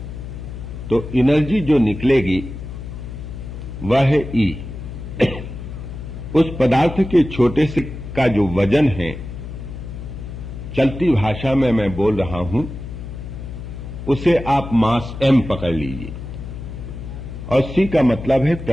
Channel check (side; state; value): left; noise; hum, 9 dB below the sound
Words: तो एनर्जी जो निकलेगी वह है E। उस पदार्थ के छोटे से का जो वजन है, चलती भाषा में मैं बोल रहा हूं, उसे आप मास m पकड़ लीजिए, और c का मतलब है